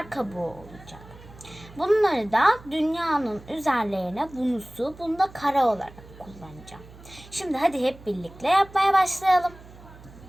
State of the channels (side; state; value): right; noise; hum, 20 dB below the sound